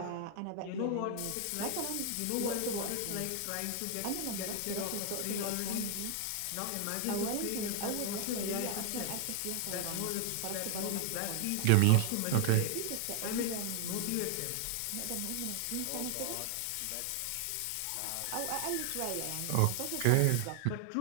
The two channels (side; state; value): both; different; correlation 0.00